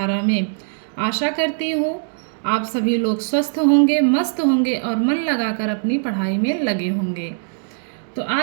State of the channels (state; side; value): silent; left; 65 dB below the other